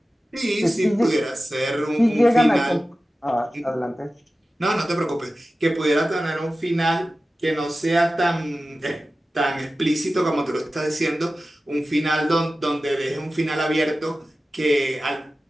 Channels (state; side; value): normal; both; correlation 0.95